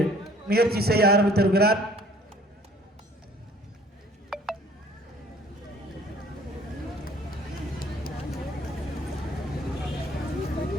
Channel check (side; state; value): both; normal; correlation 0.55